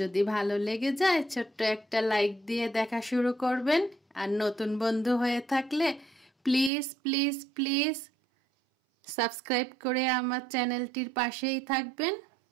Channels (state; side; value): drops out; left; at 6.7 s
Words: ভালো লেগে যায় ছোট্ট একটা লাইক দিয়ে দেখা শুরু করবেন। আর নতুন বন্ধু হয়ে থাকলে প্লিজ প্লিজ প্লিজ সাবস্ক্রাইব করে আমার চ্যানেলটির পাশেই থাকবেন।